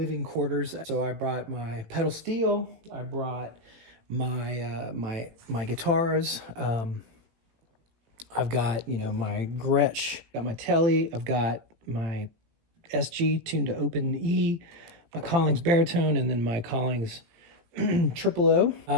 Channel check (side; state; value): left; late; 18 ms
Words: quarters. So I brought my pedal steel. I brought my guitars. I've got, my Gretsch, got my Tele, I've got my SG tuned to open E, my Collings baritone, and then my Collings triple O.